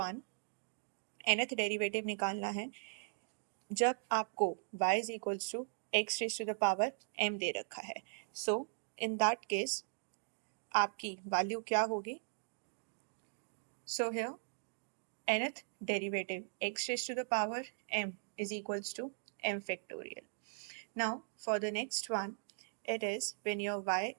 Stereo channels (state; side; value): silent; left; digital silence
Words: nth derivative निकालना है जब आपको y is equals to x raise to the power m दे रखा है। सो इन दैट केस आपकी वैल्यू क्या होगी? So here nth derivative x raised to the power m is equals to m factorial. Now for the next one, it is when your y